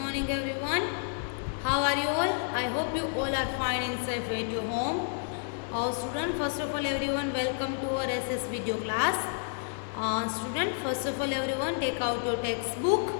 everyone. How are you all? I hope you all are fine and safe at your home. Student, first of all everyone, welcome to our SS video class. Student, first of all everyone, take out your textbook.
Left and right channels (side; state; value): right; silent; 58 dB below the other